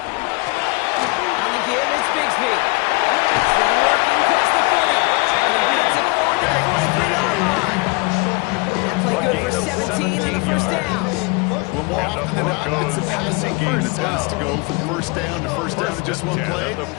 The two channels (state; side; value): quieter; right; 27.4 dB